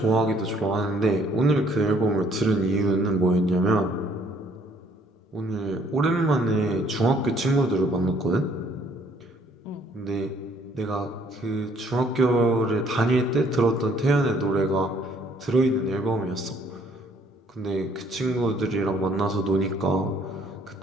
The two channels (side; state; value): both; normal; correlation 0.62